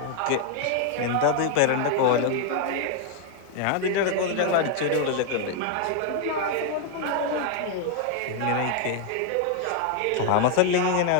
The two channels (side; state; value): both; different; correlation 0.00